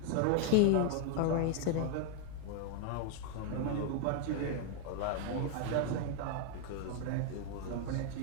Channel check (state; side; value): different; both; correlation 0.00